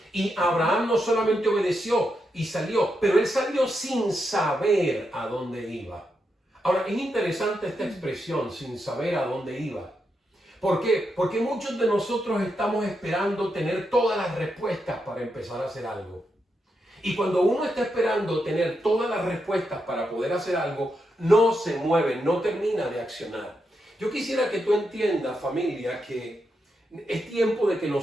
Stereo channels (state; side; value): normal; both; correlation 0.84